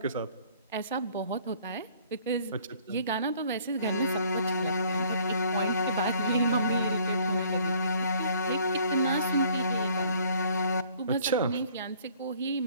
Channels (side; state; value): both; inverted; correlation -0.58